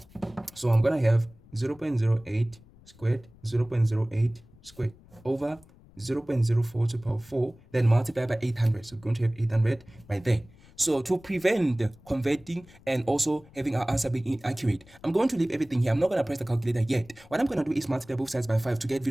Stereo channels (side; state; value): left; noise; rumble, 25 dB below the sound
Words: So I'm going to have 0.08 squared, 0.08 squared over 0.04 to the power 4, then multiply by 800. So we're going to have 800 right there. So to prevent converting and also having our answer being inaccurate, I'm going to leave everything here. I'm not going to press the calculator yet. What I'm going to do is multiply both sides by 5 to get